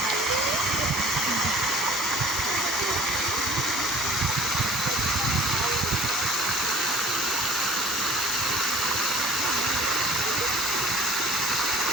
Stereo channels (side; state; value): both; normal; correlation 0.48